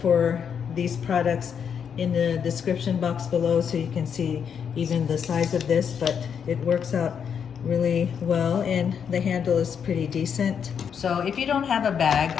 these products in the description box below so you can see even the size of this, but it works out really well and the handle is pretty decent. So if you don't have a bag,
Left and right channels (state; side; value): quieter; right; 7.4 dB